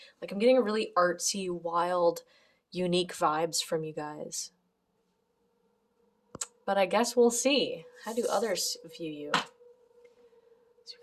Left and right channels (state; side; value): identical; both; correlation 1.00